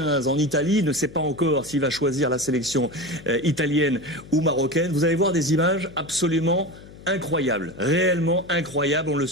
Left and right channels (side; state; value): left; noise; hum, 19 dB below the sound